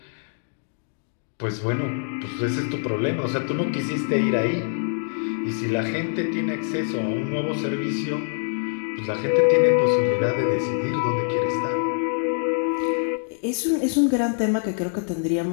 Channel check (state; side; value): silent; right; 62 dB below the other